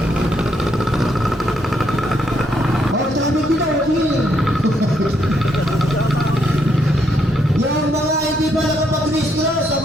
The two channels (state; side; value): normal; both; correlation 0.74